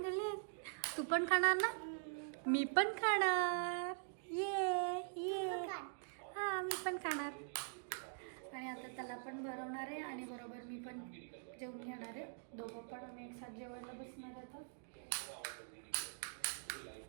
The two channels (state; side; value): silent; left; digital silence